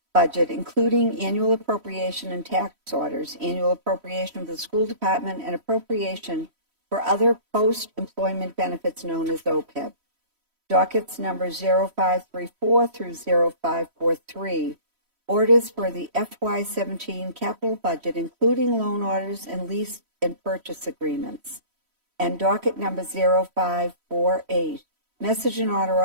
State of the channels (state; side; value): late; left; 3.1 ms